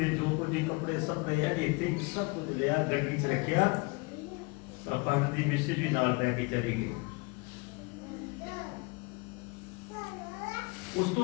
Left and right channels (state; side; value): quieter; right; 28.7 dB